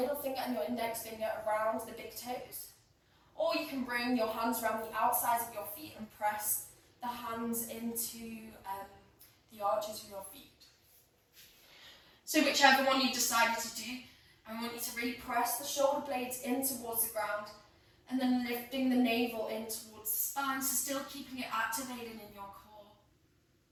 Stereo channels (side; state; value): both; identical; correlation 1.00